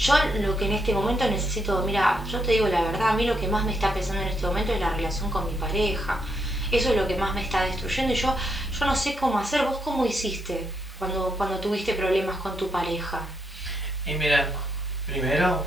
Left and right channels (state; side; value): normal; both; correlation 0.79